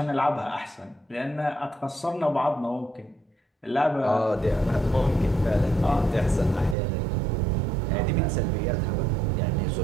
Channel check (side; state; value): left; drops out; at 6.8 s